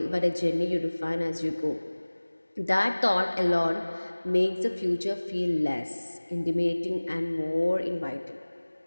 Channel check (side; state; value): both; inverted; correlation -1.00